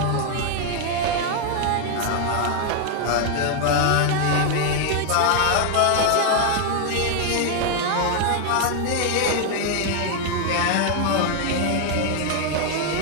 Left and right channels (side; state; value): both; different; correlation 0.00